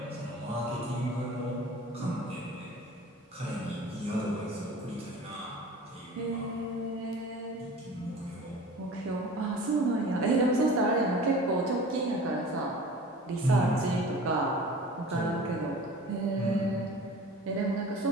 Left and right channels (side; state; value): both; normal; correlation 0.41